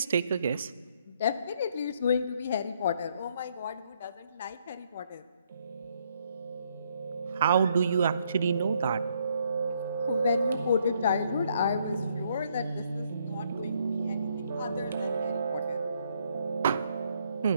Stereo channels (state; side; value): inverted; both; correlation -0.70